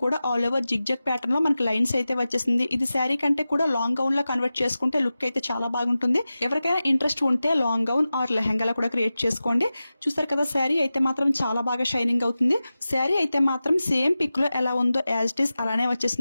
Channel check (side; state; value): both; inverted; correlation -0.95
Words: కూడా ఆల్ ఓవర్ జిగ్జాగ్ ప్యాటర్న్ లో మనకి లైన్స్ అయితే వచ్చేసింది. ఇది శారీ కంటే కూడా లాంగ్ గౌన్ లో కన్వర్ట్ చేసుకుంటే లుక్ అయితే చాలా బాగుంటుంది. ఎవరికైనా ఇంట్రెస్ట్ ఉంటే లాంగ్ గౌన్ ఆర్ లెహంగా కూడా క్రియేట్ చేసుకోండి. చూసారు కదా, శారీ అయితే మాత్రం చాలా బాగా షైనింగ్ అవుతుంది. శారీ అయితే మాత్రం సేమ్ పిక్ లో ఎలా ఉందో యాజ్ ఇట్ ఈస్ అలానే